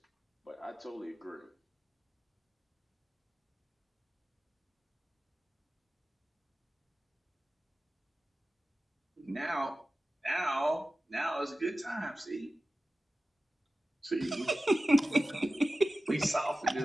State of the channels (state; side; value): normal; both; correlation 0.95